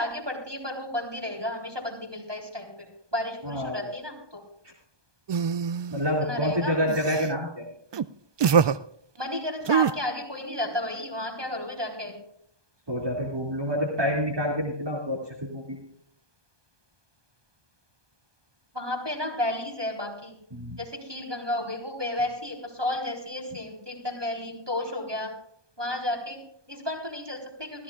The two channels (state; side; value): late; left; 1.2 ms